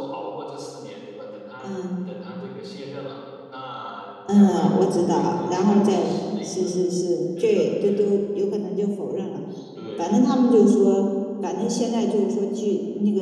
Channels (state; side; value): identical; both; correlation 1.00